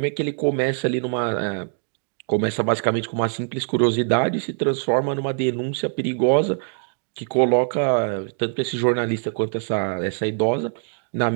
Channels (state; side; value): silent; left; digital silence